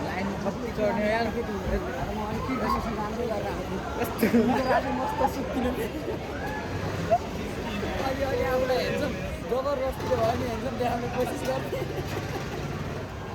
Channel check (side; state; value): both; identical; correlation 1.00